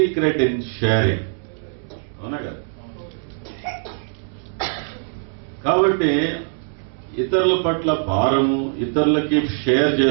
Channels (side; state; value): left; silent; 60 dB below the other